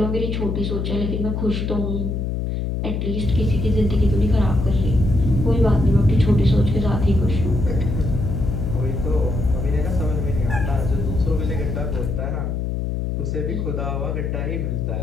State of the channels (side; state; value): left; noise; hum, 1 dB below the sound